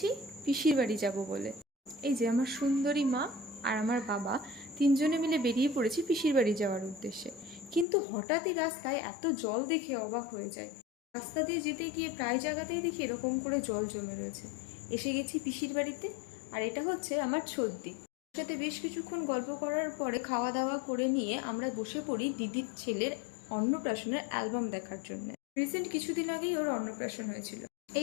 পিসির বাড়ি যাব বলে। এই যে আমার সুন্দরী মা আর আমার বাবা তিনজনে মিলে বেরিয়ে পড়েছি পিসির বাড়ি যাওয়ার উদ্দেশ্যে। কিন্তু হঠাৎই রাস্তায় এত জল দেখে অবাক হয়ে যায়। রাস্তা দিয়ে যেতে গিয়ে প্রায় জায়গাতেই দেখি এরকম করে জল জমে রয়েছে। এসে গেছি পিসির বাড়িতে, আর এটা হচ্ছে আমার ছদ্দি। ওর সাথে বেশ কিছুক্ষণ গল্প করার পরে খাওয়া দাওয়া করে নিয়ে আমরা বসে পড়ি দিদির ছেলের অন্নপ্রাশনের অ্যালবাম দেখার জন্য। রিসেন্ট কিছুদিন আগেই ওর অন্নপ্রাশন হয়েছিল।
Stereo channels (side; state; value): right; drops out; at 7.9 s